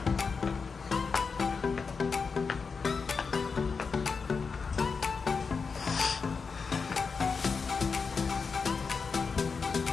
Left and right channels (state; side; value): quieter; right; 5.1 dB